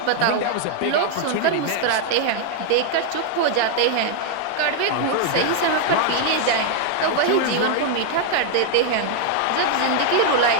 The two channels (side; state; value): both; different; correlation 0.00